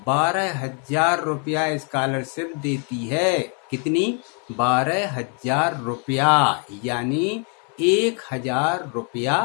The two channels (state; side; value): quieter; right; 39.8 dB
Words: 12,000 रुपया स्कॉलरशिप देती है। कितनी? 12,000 रुपया, यानी 1,000